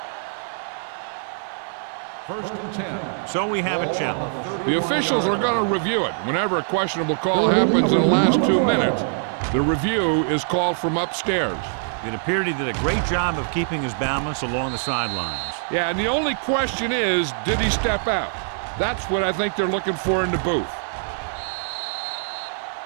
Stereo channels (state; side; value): silent; left; 55 dB below the other